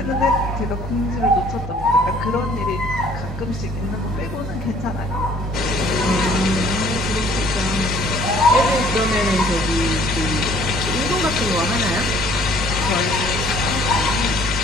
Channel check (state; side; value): normal; both; correlation 0.57